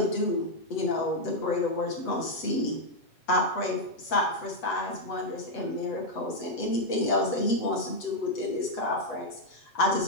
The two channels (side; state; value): right; late; 7.9 ms